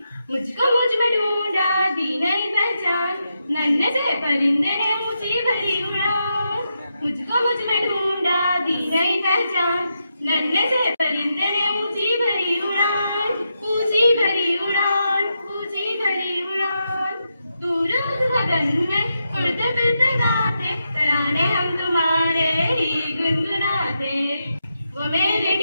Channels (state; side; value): inverted; both; correlation -0.84